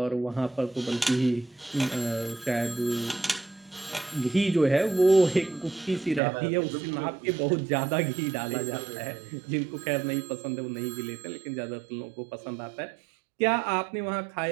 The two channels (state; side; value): drops out; left; at 6.2 s